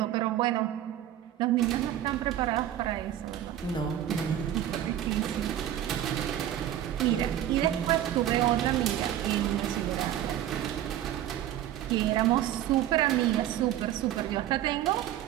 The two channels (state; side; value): quieter; left; 11.9 dB